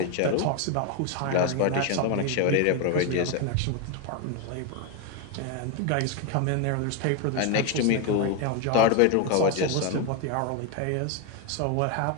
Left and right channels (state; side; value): different; both; correlation 0.02